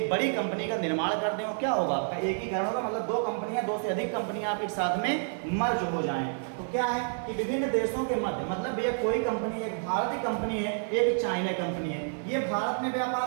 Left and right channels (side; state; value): left; silent; digital silence